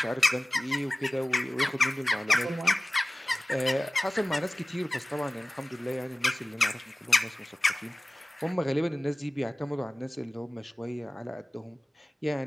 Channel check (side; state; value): both; normal; correlation 0.96